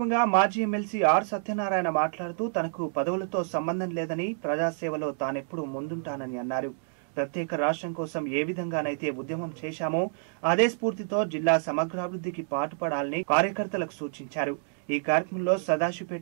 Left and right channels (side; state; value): left; silent; digital silence